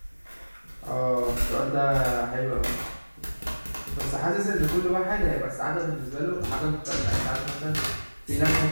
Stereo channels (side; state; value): both; inverted; correlation -1.00